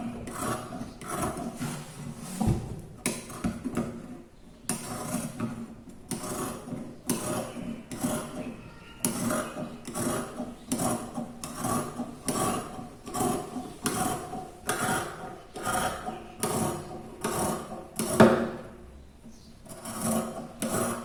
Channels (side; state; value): both; identical; correlation 1.00